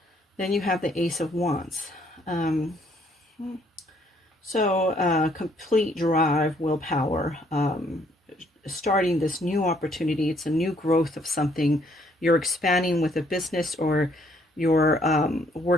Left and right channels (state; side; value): normal; both; correlation 0.66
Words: Then you have the Ace of Wands. Complete drive, willpower, starting this new opportunity. It's a new growth of something. You're expanding with a business, or you're